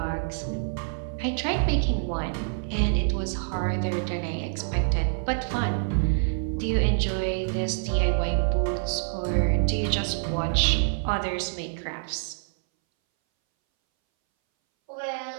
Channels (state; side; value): silent; left; 61 dB below the other